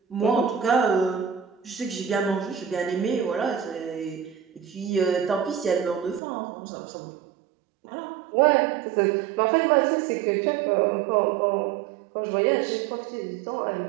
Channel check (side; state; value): left; drops out; at 6.2 s